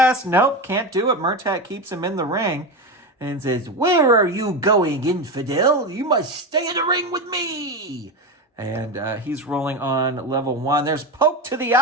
Nope, can't do it. Murtak keeps him in the ring and says, "Where are you going, infidel? You must stay in the ring with me." And he's rolling on level 1. There's poke to the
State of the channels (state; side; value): normal; both; correlation 0.18